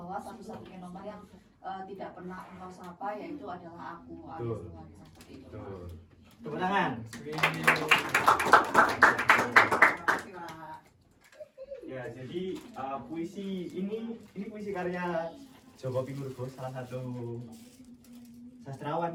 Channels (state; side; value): identical; both; correlation 1.00